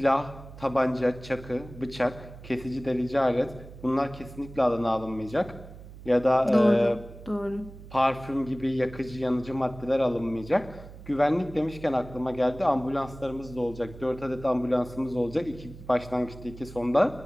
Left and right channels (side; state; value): right; noise; hum, 16 dB below the sound